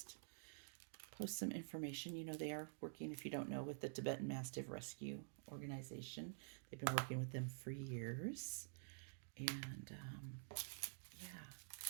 some information. You know, they are working, if you don't know, with the Tibetan Mastiff Rescue Organization. They've been working with them for years. And, yeah.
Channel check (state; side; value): silent; left; digital silence